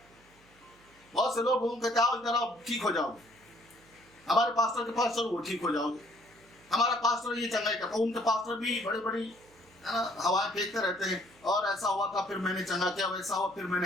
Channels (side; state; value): right; noise; hum, 29 dB below the sound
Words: बहुत से लोग कहते हैं इधर आओ ठीक हो जाओगे, हमारे पास्टर के पास चलो वो ठीक हो जाओगे, हमारा पास्टर ये चंगाई करता। उनके पास्टर भी बड़ी बड़ी हवाएं फेंकते रहते हैं, और ऐसा हुआ था फिर मैंने चंगा किया, वैसा हुआ फिर